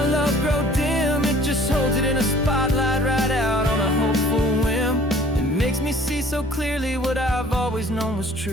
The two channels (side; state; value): both; normal; correlation 0.52